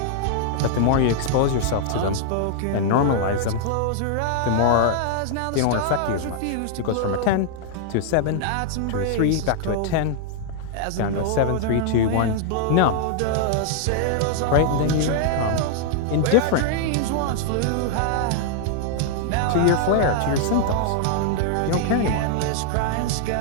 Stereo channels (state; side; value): different; both; correlation -0.01